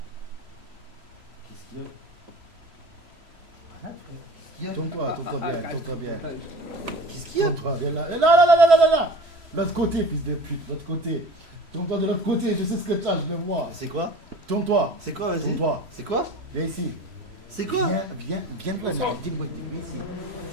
Qu'est-ce qu'il y a? Arrête, frère. Qu'est-ce qu'il y a? Tourne-toi bien, tourne-toi bien. Qu'est-ce qu'il y a? Tourne-toi bien là. Là. L'autre côté, fils de pute, l'autre côté. Tourne-toi de l'autre côté, je sais ce que tu as, je le vois. C'est quoi? Tourne-toi. C'est quoi, vas-y? Tourne-toi. C'est quoi? Viens ici. C'est quoi? Viens de là. Dis-moi, viens ici.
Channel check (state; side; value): late; left; 3.0 ms